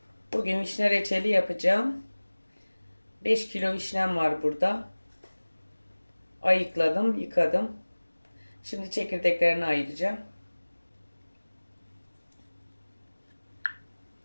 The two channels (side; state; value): both; inverted; correlation -1.00